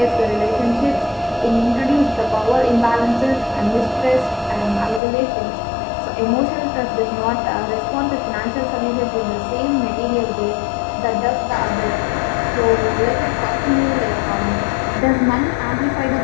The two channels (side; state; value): right; drops out; at 5.0 s